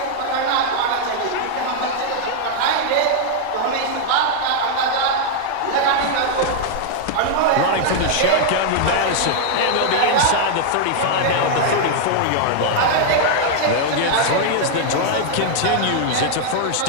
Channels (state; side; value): different; both; correlation 0.00